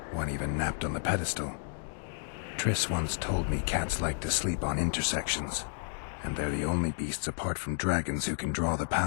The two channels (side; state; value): right; silent; digital silence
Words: One even napped on the pedestal. Triss once told me cats like to sleep on intersections, and they're the only beasts apart from dragons who can draw the